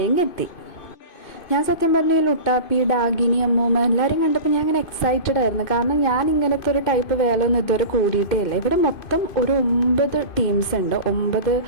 എത്തി. ഞാൻ സത്യം പറഞ്ഞ ലുട്ടാപ്പി, ഡാഗിനി, അമ്മൂമ്മ എല്ലാവരും കണ്ടപ്പോൾ ഞാൻ ഇങ്ങനെ എക്സൈറ്റഡ് ആയിരുന്നു. കാരണം ഞാൻ ഇങ്ങനത്തെ ഒരു ടൈപ്പ് വേല ഒന്നും ഇതുവരെ കൂടിയിട്ടേ ഇല്ല. ഇവിടെ മൊത്തം ഒരു 9 ടീംസ് ഉണ്ട്. 9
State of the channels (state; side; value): late; right; 2.5 ms